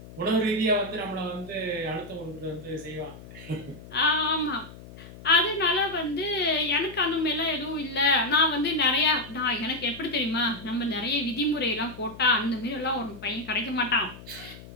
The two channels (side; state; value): left; noise; hum, 17 dB below the sound